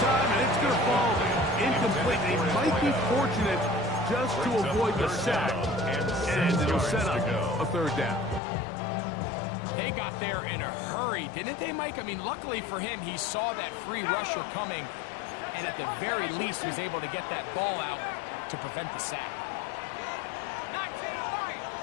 time, and it's going to fall incomplete. He might be fortunate just to avoid the sack, and it'll set up a 3rd down. They got there in a hurry, didn't they, Mike? I mean, luckily for him, he saw that free rusher coming, and at the very least was able to get that ball out to prevent the sack.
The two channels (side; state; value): right; drops out; at 8.4 s